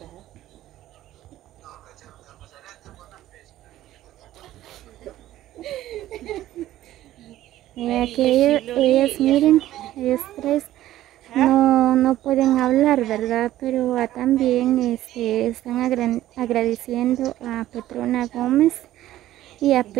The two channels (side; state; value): left; quieter; 14.2 dB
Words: Que ellos miren, ellos tres no pueden hablar, ¿verdad? Pero también están agradeciendo a Petrona Gómez y a